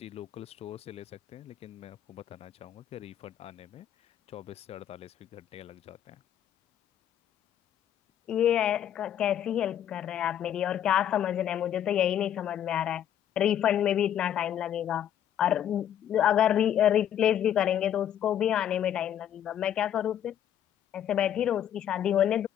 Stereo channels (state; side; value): quieter; right; 10.3 dB